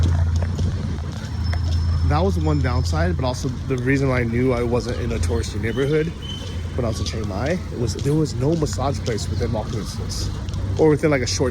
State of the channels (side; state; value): both; identical; correlation 1.00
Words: That was one downside, but also the reason why I knew I wasn't in a touristy neighborhood when I was in Chiang Mai, there was no massage place within walking distance, or within like a